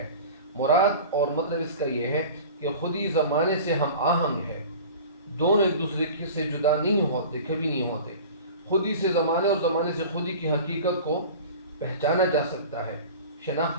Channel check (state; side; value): inverted; both; correlation -0.38